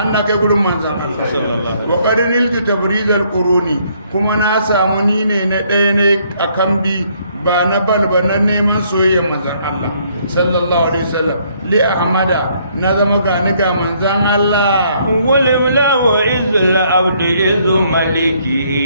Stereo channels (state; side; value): inverted; both; correlation -0.67